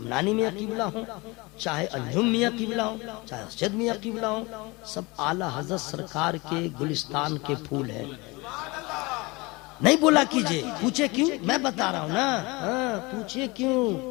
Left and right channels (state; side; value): quieter; right; 24.7 dB